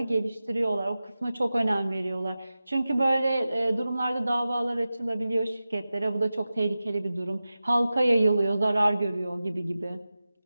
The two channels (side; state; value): both; inverted; correlation -0.95